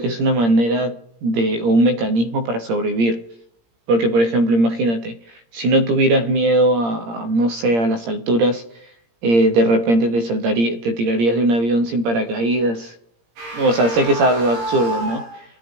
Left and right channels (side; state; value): left; late; 17 ms